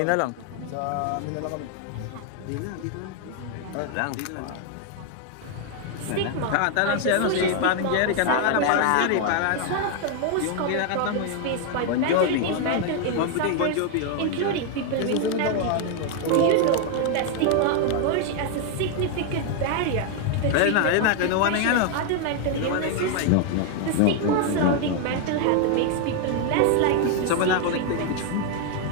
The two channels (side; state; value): both; different; correlation 0.01